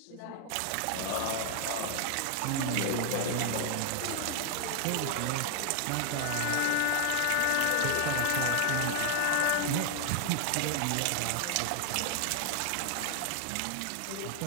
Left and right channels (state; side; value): different; both; correlation 0.00